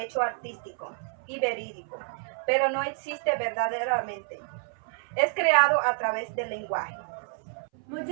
artístico y verídico, pero no existe verdaderamente. Es creado a través del lenguaje.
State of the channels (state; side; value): silent; left; 59 dB below the other